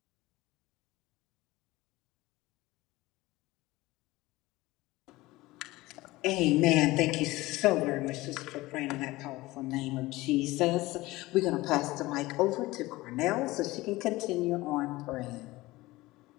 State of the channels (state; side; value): quieter; right; 19.4 dB